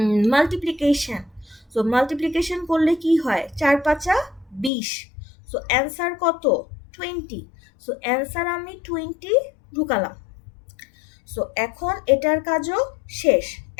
মাল্টিপ্লিকেশন। সো মাল্টিপ্লিকেশন করলে কি হয়? 4 5 20। সো অ্যান্সার কত? 20। সো অ্যান্সার আমি 20 ঢুকালাম। সো এখন এটার কাজও শেষ।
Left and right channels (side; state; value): right; drops out; at 4.7 s